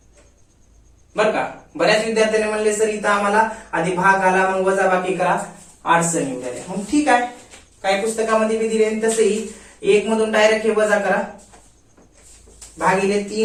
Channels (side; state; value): both; identical; correlation 1.00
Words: बर का. बऱ्याच विद्यार्थ्यांनी म्हणले सर इथं आम्हाला आधी भाग आला मग वजा बाकी करा, अडचण येऊ द्या. मग ठीक आहे, काही पुस्तकामध्ये बी दिले तसंही 1 मधून डायरेक्ट हे वजा करा, भागिले